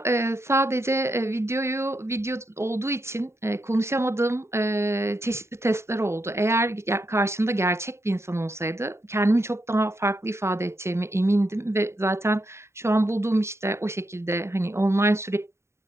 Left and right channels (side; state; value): left; late; 0.13 ms